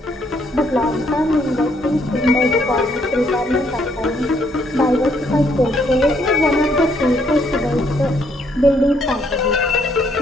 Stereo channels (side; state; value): both; normal; correlation 0.70